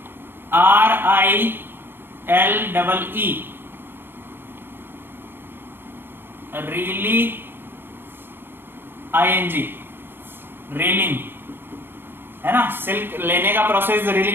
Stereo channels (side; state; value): left; late; 0.10 ms